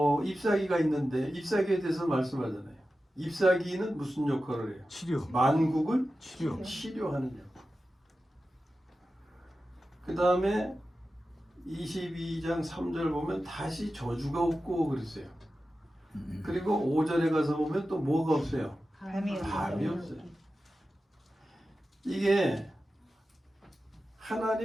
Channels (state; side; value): normal; both; correlation 0.93